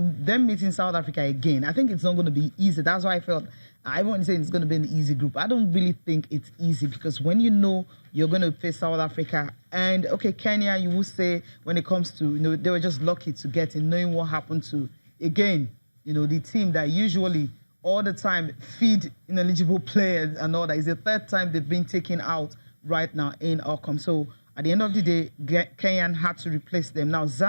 meeting South Africa again, I think it's not going to be easy. That's why I felt, I won't say it's going to be an easy group. I don't really think it's easy because when you know you're going to face South Africa and, okay, Kenya, you will say when it comes to, you know, they were just lucky to get in, knowing what happened to, again, you know, the team that usually all the time feed ineligible players and all that. It's the third time they've been taken out right now in AWCON. So at the end of the day, Kenya had to replace them. Now,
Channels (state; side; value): inverted; both; correlation -1.00